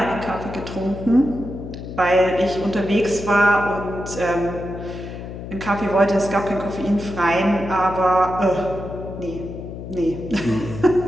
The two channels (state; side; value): noise; left; hum, 10 dB below the sound